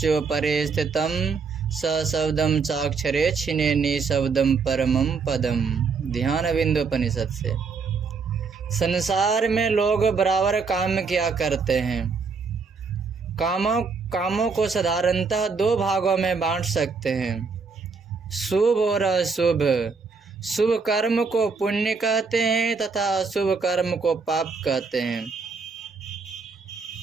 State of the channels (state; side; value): quieter; left; 4.9 dB